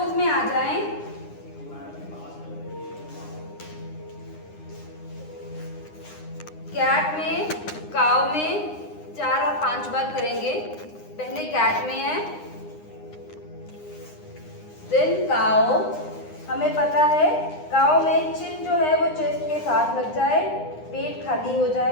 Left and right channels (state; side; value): late; right; 9.8 ms